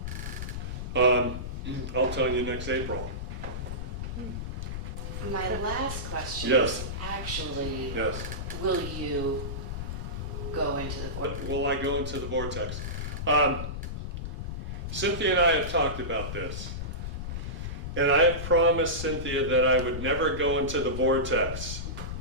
I'll tell you next April. My last question Yes. is actually, Yes. will you go into the vortex? Will I go into the vortex? Cynthia and I have talked about this. And I have promised Cynthia that I would never go into the vortex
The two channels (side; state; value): left; noise; rumble, 5 dB below the sound